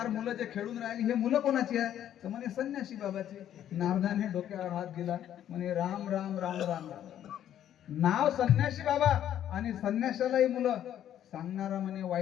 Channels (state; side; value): quieter; right; 10.9 dB